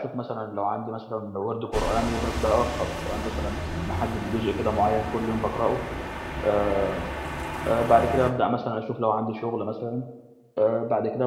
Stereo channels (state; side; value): identical; both; correlation 1.00